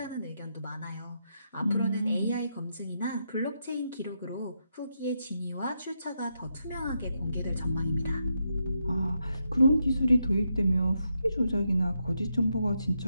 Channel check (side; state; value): both; inverted; correlation -0.82